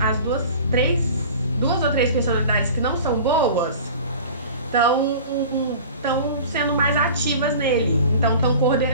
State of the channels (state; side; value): inverted; both; correlation -0.40